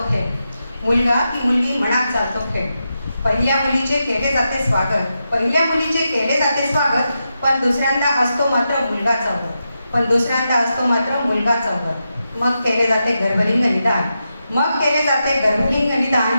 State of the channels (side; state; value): both; inverted; correlation -0.87